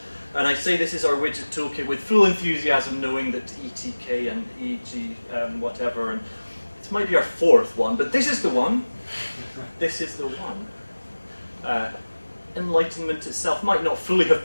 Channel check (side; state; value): both; inverted; correlation -1.00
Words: And I say this is our widget toolkit with full enthusiasm, knowing that ETK and EG whatever, and this might be our fourth one, but this is the one. This is the one. Enlightenment itself might not fully have